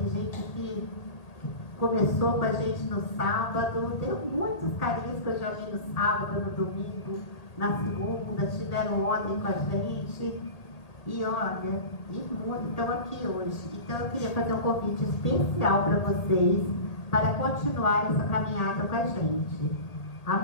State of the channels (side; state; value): right; late; 1.8 ms